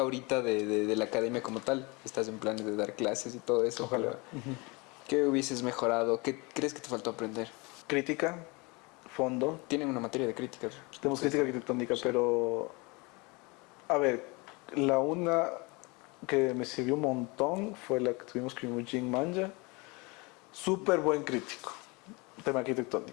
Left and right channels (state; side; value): quieter; right; 27.1 dB